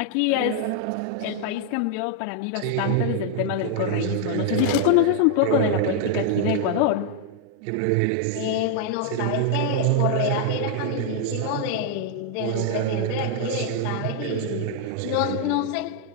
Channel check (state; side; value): different; both; correlation 0.00